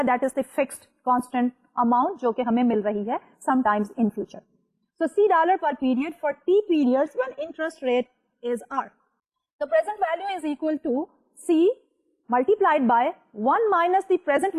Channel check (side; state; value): both; identical; correlation 1.00